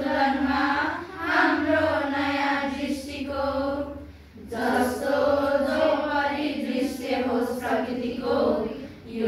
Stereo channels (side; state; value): both; identical; correlation 1.00